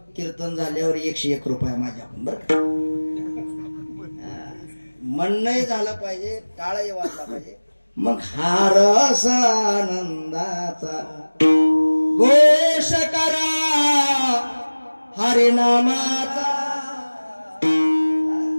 कीर्तन झाल्यावर 101 रुपये माझ्याकडून. बरं का, म्हणणंही झालं पाहिजे, टाळही वाजला पाहिजे. मग हा रस आनंदाचा घोष करा हरिनामाचा.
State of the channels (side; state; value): both; inverted; correlation -1.00